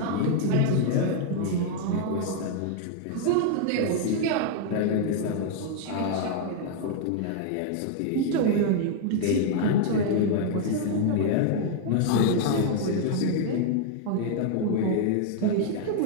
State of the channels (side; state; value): both; different; correlation 0.00